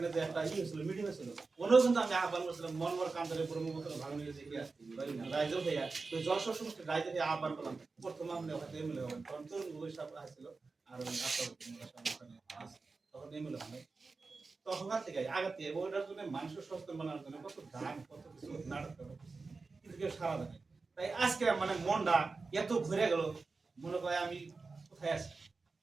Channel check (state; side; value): quieter; left; 4.1 dB